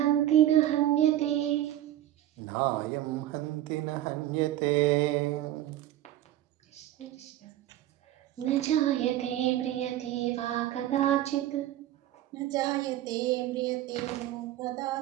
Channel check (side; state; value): left; quieter; 13.3 dB